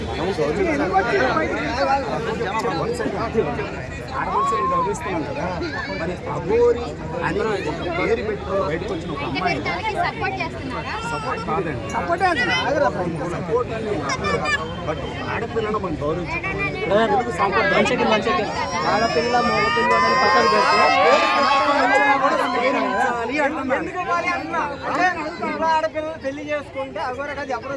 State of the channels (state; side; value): identical; both; correlation 1.00